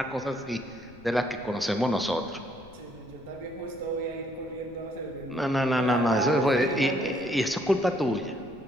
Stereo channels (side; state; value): left; noise; rumble, 22 dB below the sound